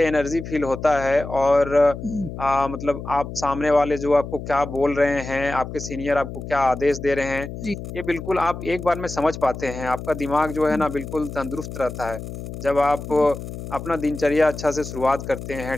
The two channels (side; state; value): left; noise; hum, 9 dB below the sound